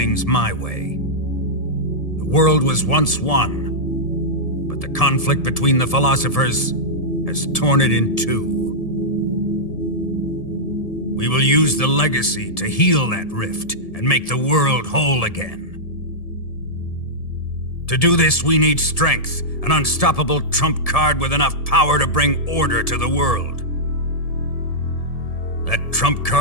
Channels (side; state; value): right; late; 1.7 ms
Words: my way. The world was once one, but the conflict between the philosophers has torn it in two. We will use the legacy to heal that rift and make the world whole again. To do this, we need strength, an unstoppable trump card with enough power to bring order to the world. That trump